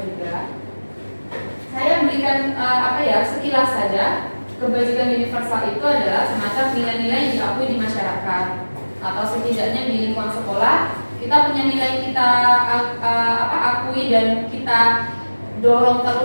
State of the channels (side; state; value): both; inverted; correlation -1.00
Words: juga. Saya berikan sekilas saja. Kebajikan universal itu adalah semacam nilai-nilai yang diakui di masyarakat, atau setidaknya di lingkungan sekolah kita punya nilai kita akui dan kita dorong